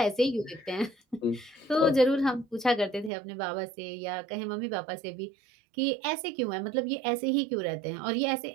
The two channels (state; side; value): drops out; left; at 3.1 s